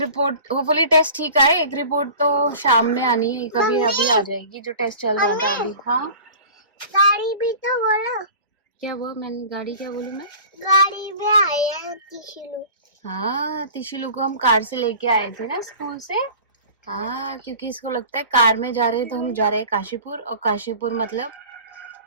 होपफुली टेस्ट ठीक आए, एक रिपोर्ट तो शाम में आनी है, कभी अभी आ जाएगी जो टेस्ट चल रहा था अभी। हाँ गाड़ी भी तो बोलो। क्या हुआ? मैंने गाड़ी क्या बोलूँ मैं? गाड़ी में आए हैं तिशुलू। हाँ, तिशुलू को हम कार से लेके आए थे ना स्कूल से। हाँ, क्योंकि इसको लगता है कार में जा रहे हैं तो हम जा रहे हैं काशीपुर, और काशीपुर मतलब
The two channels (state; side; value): inverted; both; correlation -0.41